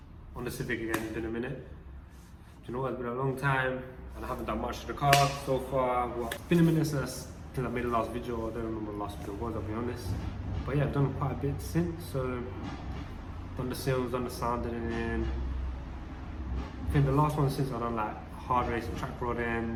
on the Civic again, it's been a minute. Do you know what, it's been a long time and I haven't done much to the car so far. Well, it's been a minute since I made the last video. I don't remember what the last video was, I'll be honest. But yeah, I've done quite a bit since. So, done the sills, done the sounding in. I think the last one since I've done like hard race, track rod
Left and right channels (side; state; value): both; identical; correlation 1.00